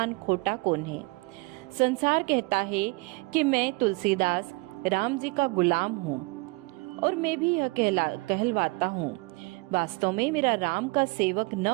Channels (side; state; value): left; quieter; 27.0 dB